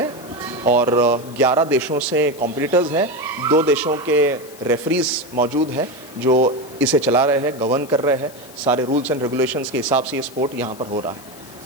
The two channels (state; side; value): noise; left; hiss, 20 dB below the sound